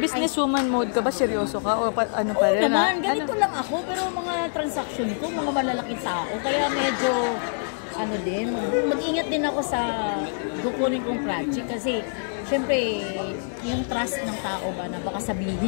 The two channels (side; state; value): right; silent; digital silence